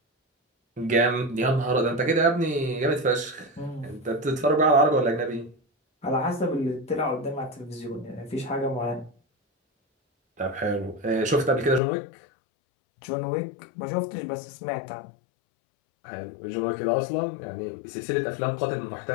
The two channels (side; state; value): right; drops out; at 11.8 s